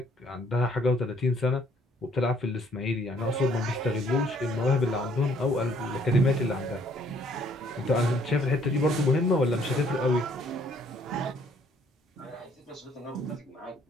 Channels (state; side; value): normal; both; correlation 0.63